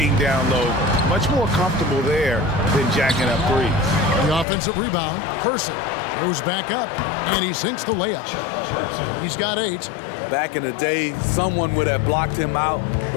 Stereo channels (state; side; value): drops out; right; at 4.5 s